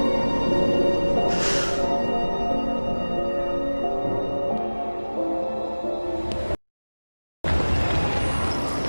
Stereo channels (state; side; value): inverted; both; correlation -1.00